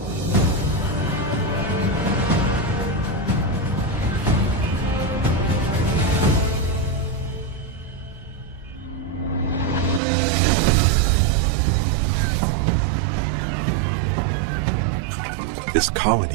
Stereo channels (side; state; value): left; drops out; at 10.0 s